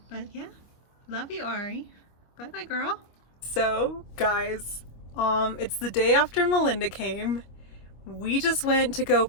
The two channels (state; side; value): late; right; 25 ms